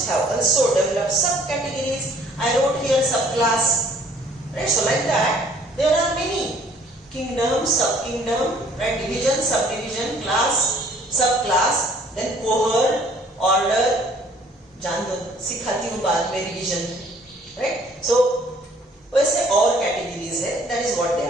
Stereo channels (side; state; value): both; normal; correlation 0.58